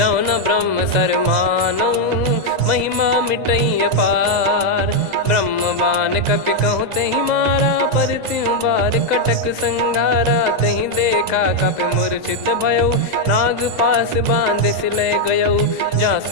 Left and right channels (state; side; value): late; left; 2.0 ms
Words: न ब्रह्म सर मानऊ। महिमा मिटई अपार ब्रह्म बान कपि कहूँ तही मारा। पर त्यों बार कटक संगारा तही देखा कपि मूर्छित भयऊ। नाग पास बांध सिले गयऊ जा